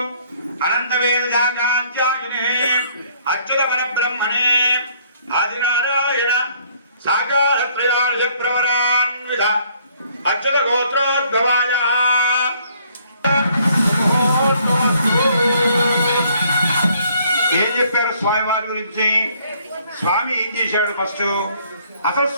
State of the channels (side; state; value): both; inverted; correlation -0.63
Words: అనంత వేదాంత్యాయునే అచ్యుత పరబ్రహ్మణే ఆదినారాయణ సాకార త్రయార్జ ప్రవరాన్విత అచ్యుత గోత్రోద్భవాయ. ఏం చెప్పారు స్వామివారి గురించి? స్వామి ఏం చేశాడు? ఫస్ట్ అసలు